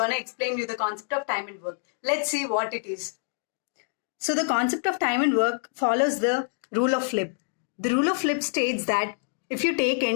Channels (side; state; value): right; silent; 60 dB below the other